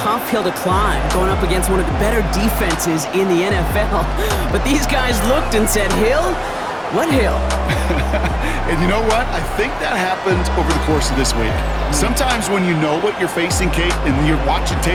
hill to climb, going up against one of the better defenses in the NFL. But these guys looked and said, Hill? What hill? And you know what? I think that happened over the course of this week. Sometimes when you know what you're facing, Kate, and you're watching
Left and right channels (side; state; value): both; identical; correlation 1.00